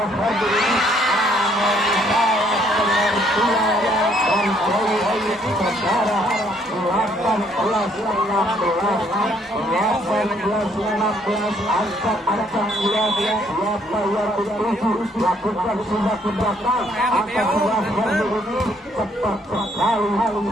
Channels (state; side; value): normal; both; correlation 0.66